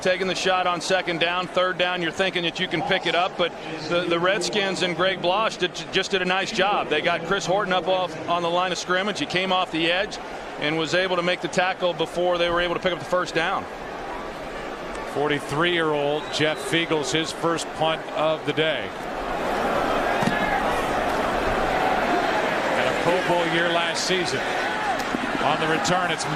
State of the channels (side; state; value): both; identical; correlation 1.00